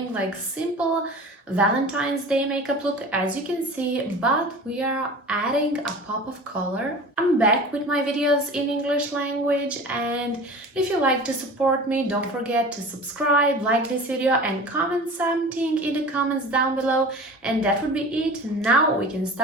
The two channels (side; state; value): both; normal; correlation 0.38